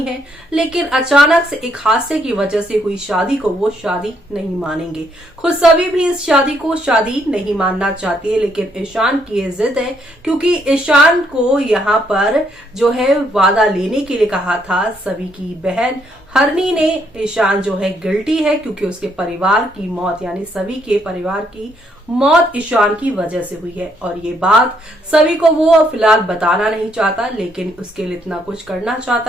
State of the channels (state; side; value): normal; both; correlation 0.72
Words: हैं। लेकिन अचानक से एक हादसे की वजह से हुई शादी को वो शादी नहीं मानेंगे। खुद सभी भी इस शादी को शादी नहीं मानना चाहती है, लेकिन ईशान की ये जिद है, क्योंकि ईशान को यहाँ पर जो है वादा लेने के लिए कहा था। सभी की बहन हरनी ने ईशान जो है गिल्टी है, क्योंकि उसके परिवार की मौत यानी सभी के परिवार की मौत ईशान की वजह से हुई है। और ये बात सभी को वो फिलहाल बताना नहीं चाहता, लेकिन उसके लिए इतना कुछ करना